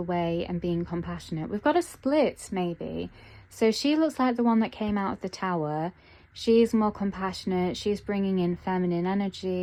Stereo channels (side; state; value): both; identical; correlation 1.00